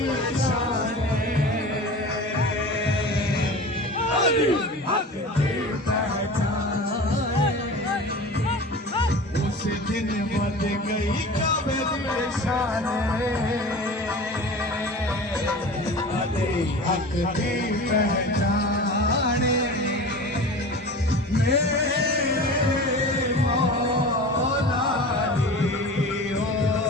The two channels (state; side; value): normal; both; correlation 0.35